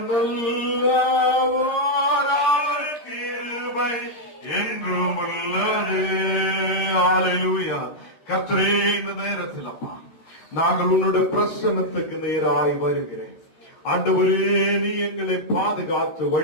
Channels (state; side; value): late; right; 13 ms